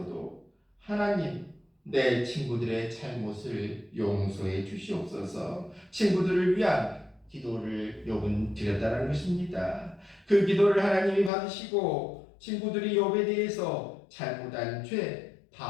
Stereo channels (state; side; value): drops out; right; at 11.3 s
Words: 하나님, 내 친구들의 잘못을 용서해 주시옵소서. 친구들을 위한 기도를 욥은 드렸다는 것입니다. 그 기도를 하나님이 받으시고 친구들이 욥에 대해서 잘못한 죄